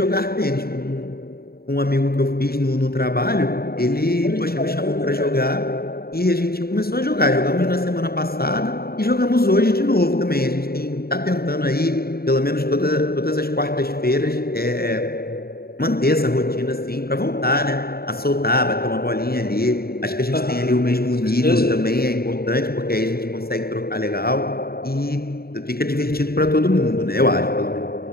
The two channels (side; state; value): right; late; 0.45 ms